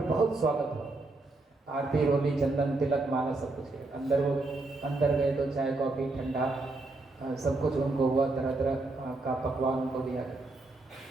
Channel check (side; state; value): left; quieter; 3.2 dB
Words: बहुत स्वागत हुआ। आरती, रोली, चंदन, तिलक, माला सब कुछ किया। अंदर गए तो चाय, कॉफ़ी, ठंडा सब कुछ उनको हुआ, तरह तरह का पकवान उनको दिया